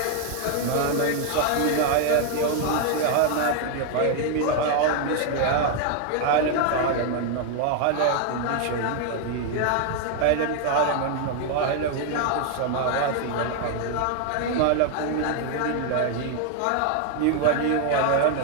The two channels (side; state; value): both; different; correlation 0.00